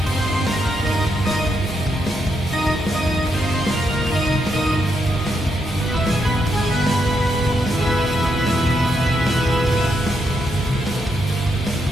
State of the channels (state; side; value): normal; both; correlation 0.80